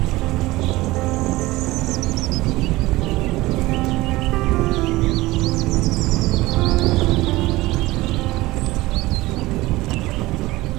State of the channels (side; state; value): left; quieter; 19.2 dB